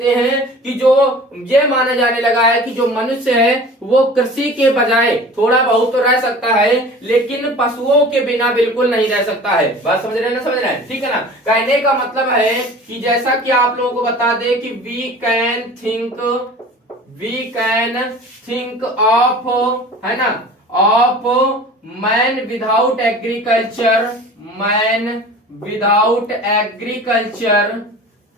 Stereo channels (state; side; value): normal; both; correlation 0.41